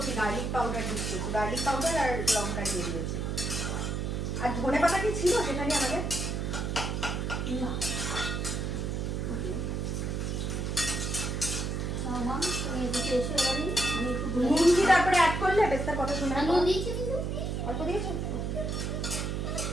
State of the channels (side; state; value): right; noise; hum, 1 dB below the sound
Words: গার্লিক পাউডার দিচ্ছি, গার্লিক পাউডার আর লঙ্কা দিয়ে দিয়েছি। আর ধনে পাতা কি ছিল সেখানে আমাদের? না তুমি এদিকে এসে এবারে আমি একটু নুন কি তারপরে অ্যাড করলে পেস্তার কথা শুনে? নুন দিয়েছি, অল্প দিয়েছো?